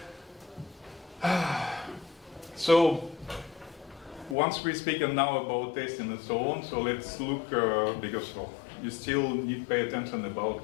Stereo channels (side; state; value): right; drops out; at 4.4 s